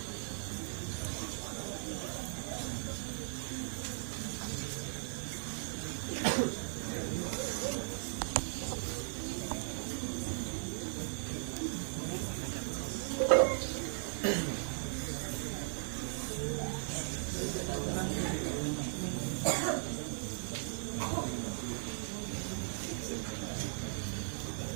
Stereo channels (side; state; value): left; silent; digital silence